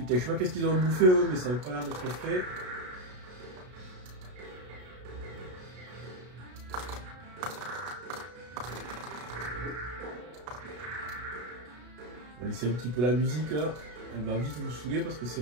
je sais pas qu'est-ce qu'ils ont bouffé eux, mais ça n'a pas l'air d'être frais. On va laisser un petit peu la musique. Hein. Elle va vite vous saouler parce que c'est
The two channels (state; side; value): late; left; 33 ms